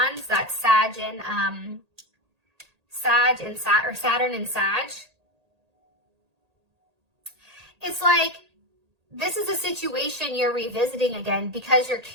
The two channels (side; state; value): left; late; 1.8 ms